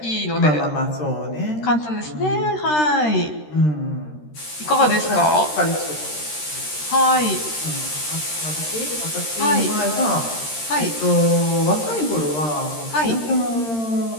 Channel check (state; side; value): late; right; 13 ms